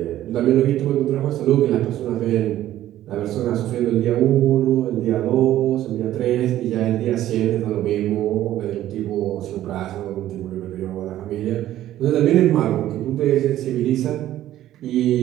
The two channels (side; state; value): left; quieter; 13.2 dB